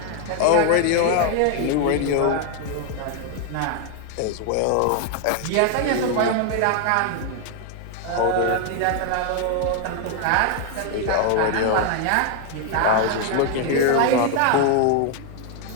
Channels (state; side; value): different; both; correlation 0.01